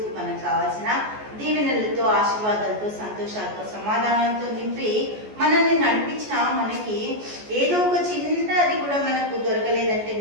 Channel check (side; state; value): left; late; 14 ms